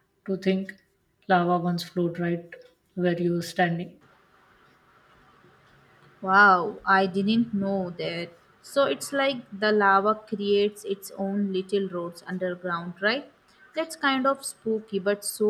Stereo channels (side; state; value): both; identical; correlation 1.00